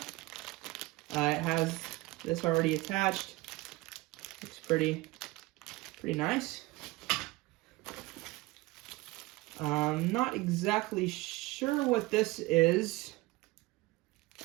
has this already attached. Looks pretty nice. Not exactly sure what this is.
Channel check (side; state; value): left; quieter; 20.8 dB